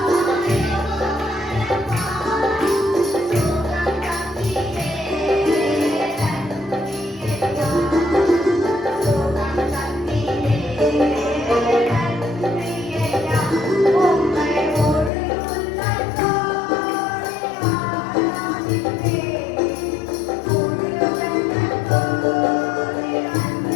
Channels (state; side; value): drops out; right; at 15.1 s